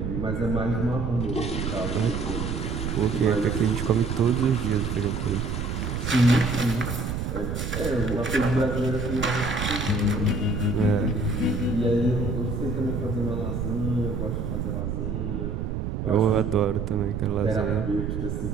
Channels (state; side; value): noise; right; rumble, 3 dB below the sound